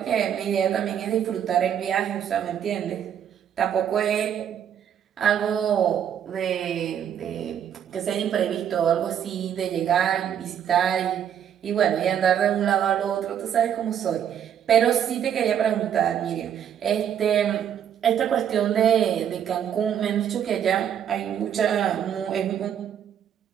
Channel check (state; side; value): quieter; left; 9.2 dB